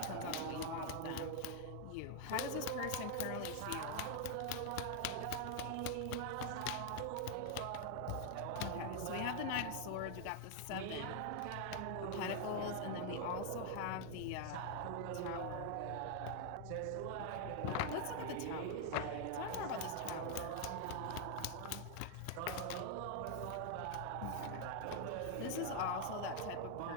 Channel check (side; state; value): both; different; correlation 0.00